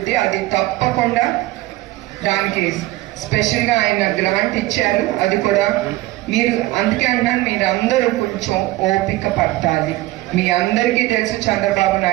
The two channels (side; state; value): left; quieter; 18.0 dB